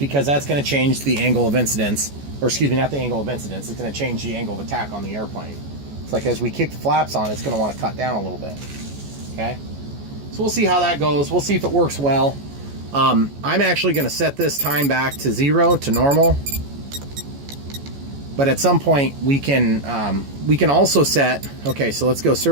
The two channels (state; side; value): late; left; 14 ms